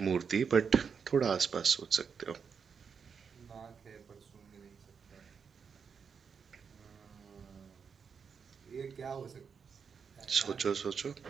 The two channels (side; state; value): left; quieter; 6.3 dB